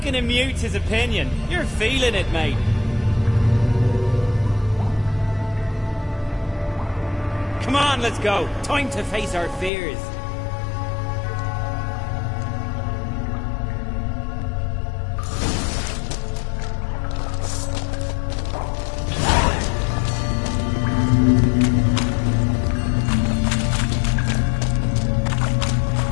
him mute his opinion. You're feeling it, mate. Come on, let's go. Time to face our fears.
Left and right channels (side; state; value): right; drops out; at 9.7 s